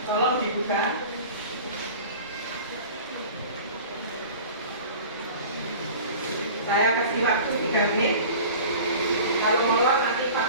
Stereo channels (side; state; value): both; inverted; correlation -0.40